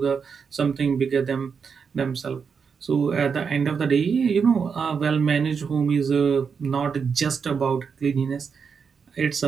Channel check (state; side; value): quieter; left; 6.1 dB